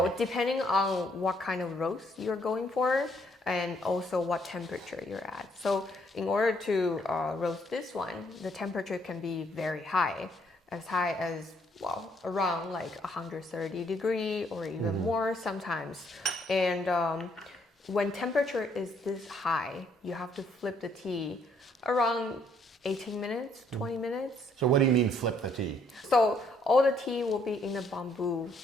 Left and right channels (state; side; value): normal; both; correlation 0.68